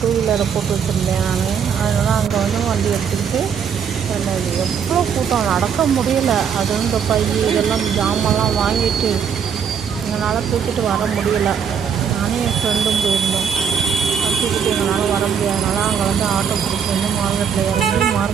டூ வீலரை போட்டு வச்சுருந்தேன் நான். அதனால் அங்கே வந்து வண்டி எடுத்துக்கிட்டு எவ்வளோ கூட்டம், நடக்க முடியல. அது இந்த பை இதெல்லாம் ஜாமான்லாம் வாங்கிட்டு எங்களால் தூக்கிட்டு வர முடியலை. நானும் என் ஃப்ரெண்டும் போயிருந்தோம். தூக்கிட்டு எங்களால் வர முடியாதனால அங்கே வந்து ஆட்டோ பிடிச்சி வந்து மார்க்கெட்டில் இறங்கி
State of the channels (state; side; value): quieter; left; 7.3 dB